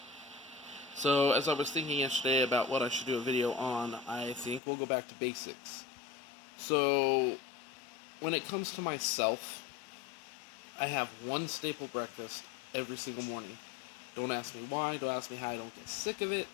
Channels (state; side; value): drops out; right; at 4.6 s